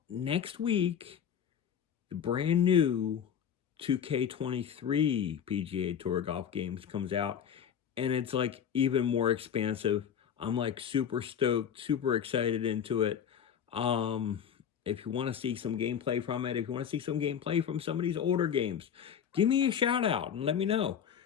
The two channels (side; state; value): right; quieter; 8.4 dB